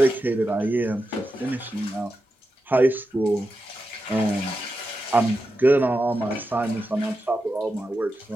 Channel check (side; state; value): both; normal; correlation 0.89